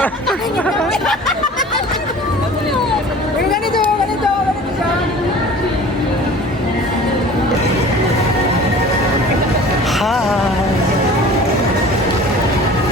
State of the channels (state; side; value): normal; both; correlation 0.43